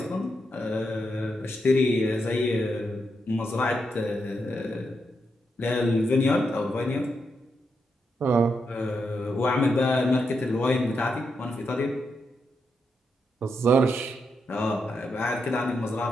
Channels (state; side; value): normal; both; correlation 0.83